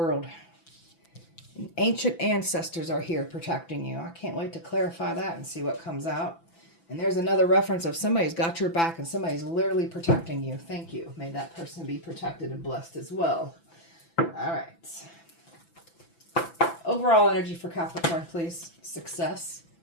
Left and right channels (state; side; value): late; right; 6.0 ms